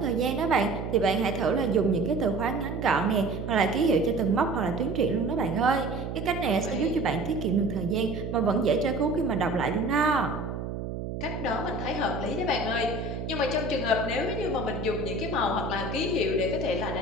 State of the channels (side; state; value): right; noise; hum, 6 dB below the sound